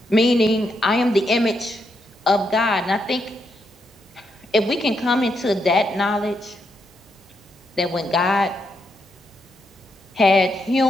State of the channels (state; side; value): normal; both; correlation 0.80